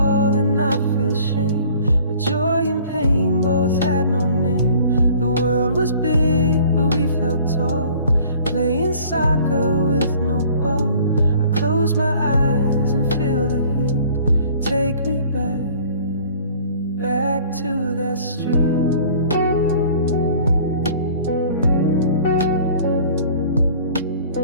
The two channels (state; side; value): inverted; both; correlation -0.51